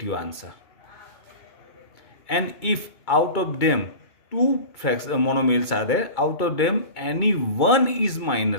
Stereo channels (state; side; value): late; right; 2.3 ms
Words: answer. And if out of them two monomials are there, out of them any one is